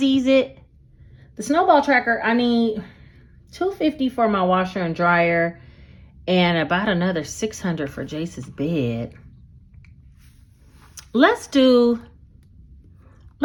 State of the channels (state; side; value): identical; both; correlation 1.00